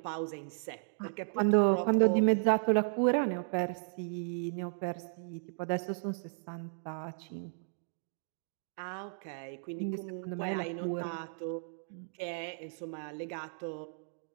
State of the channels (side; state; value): left; silent; digital silence